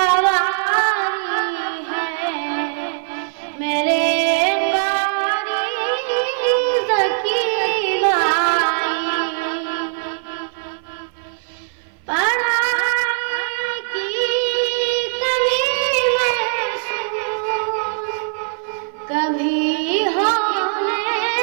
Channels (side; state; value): left; silent; 58 dB below the other